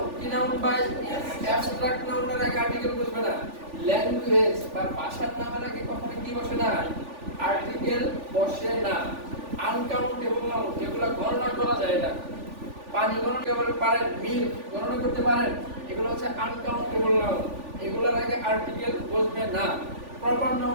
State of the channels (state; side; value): late; left; 3.4 ms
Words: কি নাউন বাই অ্যাবস্ট্রাক্ট নাউনের আগে আর্টিকেল বলবে না। ল্যাঙ্গুয়েজ বা ভাষার নামের আগে কখনো কি বসে না, আর্টিকেল বসে না। আনকাউন্টেবল নাউন যেগুলো গণনা করা যায় না, পানি গণনা করতে পারেন, মিল্ক গণনা করতে পারেন, এগুলো হচ্ছে আনকাউন্টেবল নাউন, এগুলোর আগে আর্টিকেল বসবে না। প্রপার